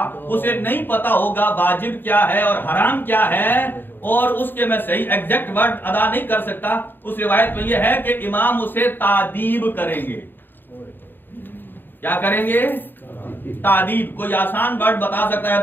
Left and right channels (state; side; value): late; right; 0.094 ms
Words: اسے نہیں پتا ہوگا واجب کیا ہے اور حرام کیا ہے، اور اس کے میں صحیح ایگزیکٹ ورڈ ادا نہیں کر سکتا، اس روایت میں یہ ہے کہ امام اسے تعدیب کریں گے. کیا کریں گے؟ تعدیب. کوئی آسان ورڈ بتا سکتا ہے